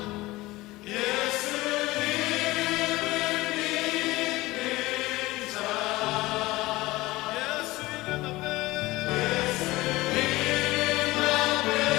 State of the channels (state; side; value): quieter; right; 19.5 dB